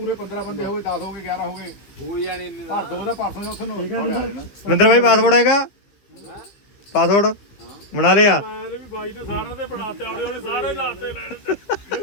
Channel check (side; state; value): right; late; 15 ms